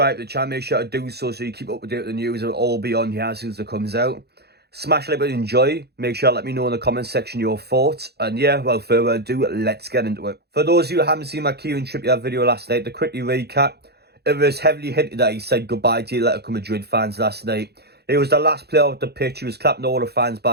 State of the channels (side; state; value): left; late; 0.47 ms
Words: to the channel, make sure to do so you keep up to date with the news. It'll all be on here as soon as it comes out. Smash like button, enjoy. Make sure to let me know in the comment section your thoughts. And yeah, without further ado, let's get into it. For those of you who haven't seen my Kieran Trippier video last night, to quickly recap, it was heavily hinted that he said goodbye to Atletico Madrid fans last night. He was the last player off the pitch. He was clapping all the fans